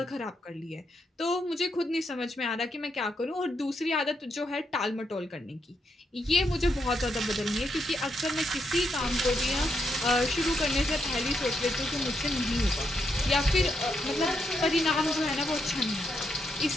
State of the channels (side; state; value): both; normal; correlation 0.80